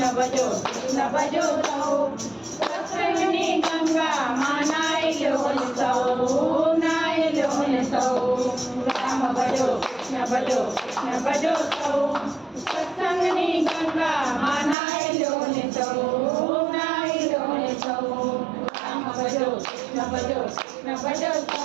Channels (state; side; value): drops out; left; at 14.8 s